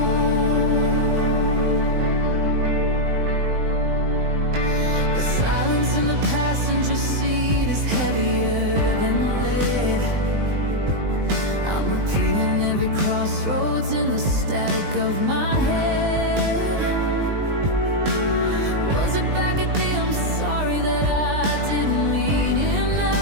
the silence in the passenger seat is heavier than lead. I'm repeating every crossroads in the static of my head. Was it back at the I'm sorry that I didn't mean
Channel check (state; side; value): late; left; 20 ms